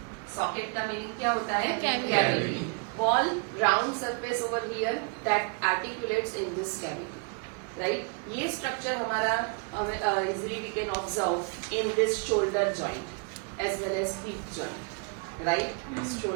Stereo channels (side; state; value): left; quieter; 36.7 dB